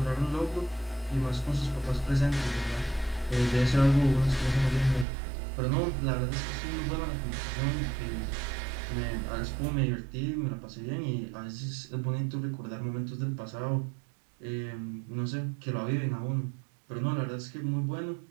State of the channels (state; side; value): drops out; left; at 5.1 s